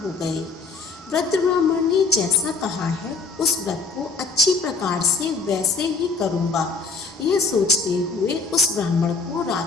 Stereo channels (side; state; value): right; quieter; 4.4 dB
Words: हो गए। वृद्ध ब्राह्मण ने जैसा कहा है उस व्रत को अच्छी प्रकार से वैसे ही करूँगा। यह सोचते हुए उस ब्राह्मण को